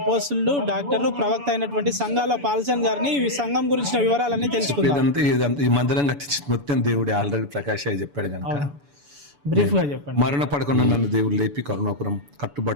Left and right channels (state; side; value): late; left; 7.0 ms